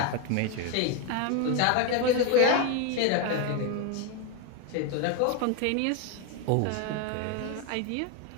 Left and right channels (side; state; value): both; different; correlation 0.01